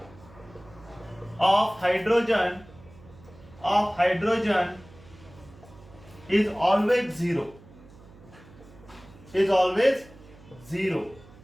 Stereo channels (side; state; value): right; noise; hum, 22 dB below the sound